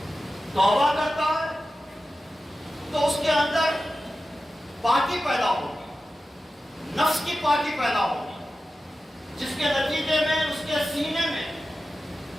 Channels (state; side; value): normal; both; correlation 0.93